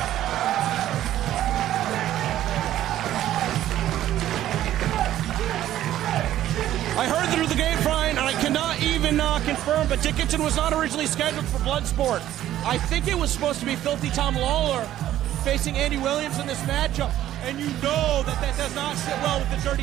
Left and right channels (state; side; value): quieter; left; 12.7 dB